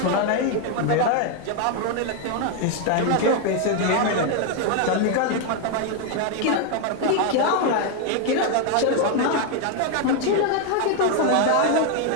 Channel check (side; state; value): both; different; correlation 0.01